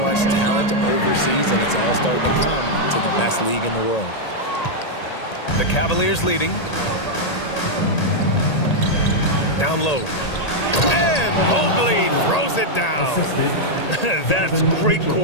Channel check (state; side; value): late; right; 1.8 ms